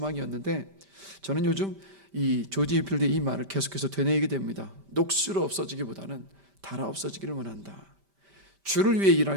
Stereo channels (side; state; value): left; late; 5.1 ms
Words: 저는 요즘 이 조지 휘필드의 이 말을 계속해서 되뇌이게 됩니다. 녹슬어 없어지기보다는 닳아 없어지기를 원한다. 주를 위해